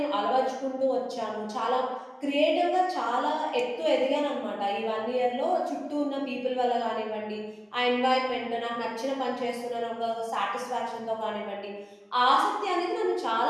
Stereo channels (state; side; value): identical; both; correlation 1.00